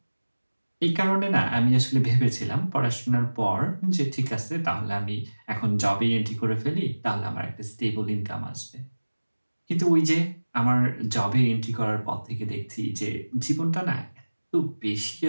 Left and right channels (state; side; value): inverted; both; correlation -1.00